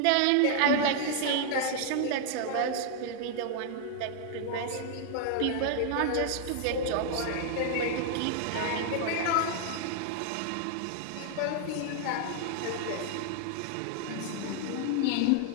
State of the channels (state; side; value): different; both; correlation 0.00